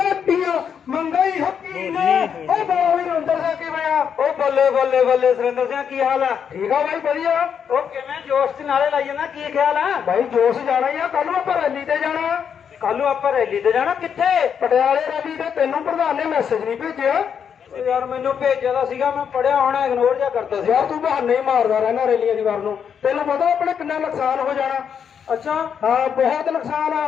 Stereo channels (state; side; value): quieter; right; 7.5 dB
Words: ਮੰਗਾਈ ਹੱਕੀ ਨੇ। ਉਹ ਬਾਈ ਅੰਦਰ ਜਾ ਕੇ ਬਿਆ ਉਹ ਬੱਲੇ ਬੱਲੇ ਬੱਲੇ ਸੁਰਿੰਦਰ ਸਿੰਘ ਕੀ ਹਾਲ ਆ? ਠੀਕ ਆ ਬਾਈ ਵਧੀਆ। ਉਹ ਕਿਵੇਂ ਜੋਸ਼ ਚ ਨਾਲੇ ਲਾਈ ਜਾਂਦਾ, ਕੀ ਖਿਆਲ ਆ? ਬਾਈ ਜੋਸ਼ ਜਾਣਾ ਹੀ ਆ, ਕੱਲ ਨੂੰ ਆਪਾਂ ਰੈਲੀ ਤੇ ਜਾਣਾ। ਕੱਲ ਨੂੰ ਆਪਾਂ ਰੈਲੀ ਤੇ ਜਾਣਾ? ਕਿੱਥੇ? ਪਟਿਆਲੇ ਰੈਲੀ ਤੇ। ਤੈਨੂੰ ਪ੍ਰਧਾਨ ਨੇ ਮੈਸੇਜ ਨਹੀਂ ਭੇਜਿਆ? ਯਾਰ ਮੈਨੂੰ ਭੇਜਿਆ ਤਾਂ ਸੀਗਾ, ਮੈਂ ਪੜਿਆ ਹੋਣਾ, ਇਗਨੋਰ ਜਿਹਾ ਕਰਦਾ ਸੀ। ਯਾਰ ਤੂੰ ਬਹਾਨੇ ਹੀ ਮਾਰਦਾ ਰਹਿਣਾ ਰੈਲੀਆਂ ਦੀ ਵਾਰ ਨੂੰ। ਤੈਨੂੰ ਪਤਾ ਆਪਣੇ ਕਿੰਨਾ ਨੁਕਸਾਨ ਹੋ ਜਾਣਾ? ਅੱਛਾ ਹਾਂ, ਬਹੁਤ ਨੁਕਸਾਨ ਆ